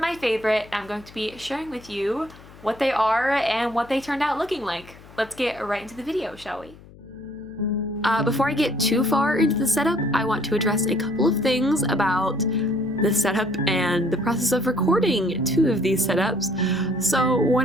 my favorite and I'm going to be sharing with you what they are and what they turned out looking like. Let's get right into the video, shall we? Before I get too far into the setup, I want to address a couple of things about the setup and the process of recording 2 of these setups. So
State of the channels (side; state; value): left; noise; hum, 21 dB below the sound